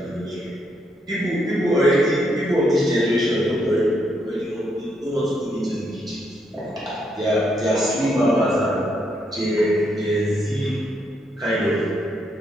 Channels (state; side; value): normal; both; correlation 0.76